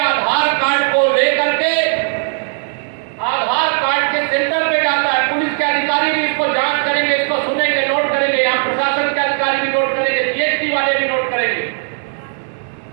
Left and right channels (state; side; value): silent; left; 68 dB below the other